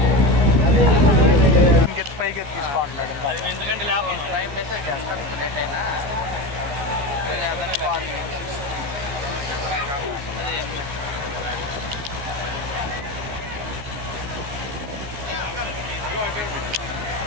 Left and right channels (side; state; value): left; late; 14 ms